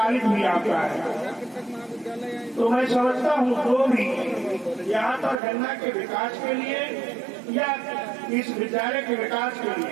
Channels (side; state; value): left; drops out; at 5.4 s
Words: भी आपका है। तो मैं समझता हूँ जो भी यहाँ पर गन्ना के विकास के लिए या इस विद्यालय के विकास के